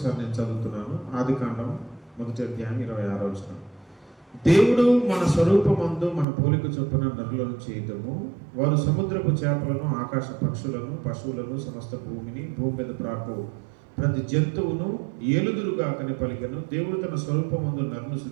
నేను చదువుతున్నాను. ఆదికాండం 1వ అధ్యాయం 26వ వచనం. దేవుడు మన స్వరూపమందు మన పోలిక చొప్పున నరులను చేయటము, వారు సముద్రపు చేపలను, ఆకాశ పక్షులను, పశువులను, సమస్త భూమిని, భూమి మీద ప్రాకు ప్రతి జంతువును ఏలుదురుగాకని పలికెను. దేవుడు తన స్వరూపమందు నరును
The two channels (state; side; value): drops out; left; at 6.2 s